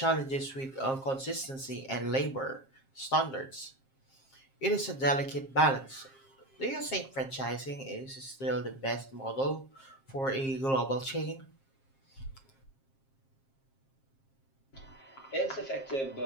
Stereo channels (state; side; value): late; right; 7.5 ms